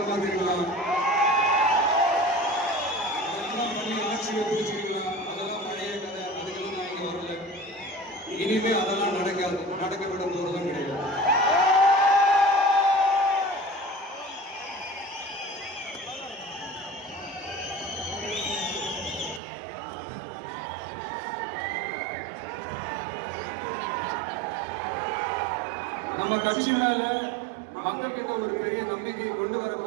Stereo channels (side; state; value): left; drops out; at 19.4 s